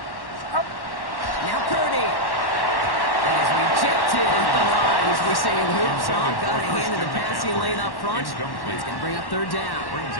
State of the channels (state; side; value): late; right; 1.1 ms